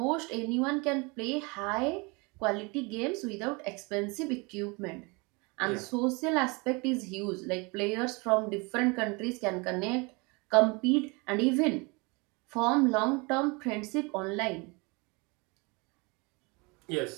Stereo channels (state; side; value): quieter; left; 28.4 dB